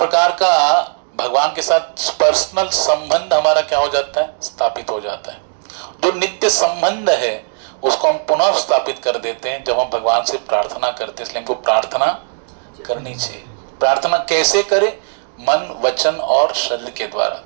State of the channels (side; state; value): left; silent; digital silence